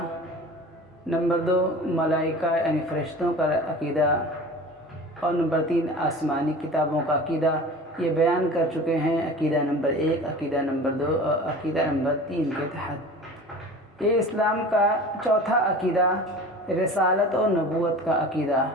نمبر 2 ملائکہ یعنی فرشتوں کا عقیدہ، اور نمبر 3 آسمانی کتابوں کا عقیدہ، یہ بیان کر چکے ہیں عقیدہ نمبر 1، عقیدہ نمبر 2 اور عقیدہ نمبر 3 کے تحت۔ یہ اسلام کا چوتھا عقیدہ رسالت اور نبوت کا عقیدہ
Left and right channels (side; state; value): both; normal; correlation 0.39